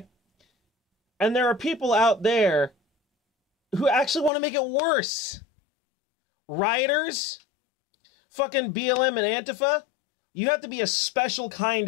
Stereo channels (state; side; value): drops out; right; at 4.3 s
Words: And there are people out there who actually want to make it worse. Rioters, fucking BLM and Antifa, you have to be a special